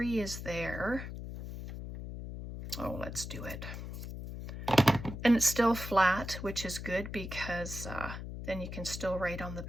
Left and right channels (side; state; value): left; noise; hum, 8 dB below the sound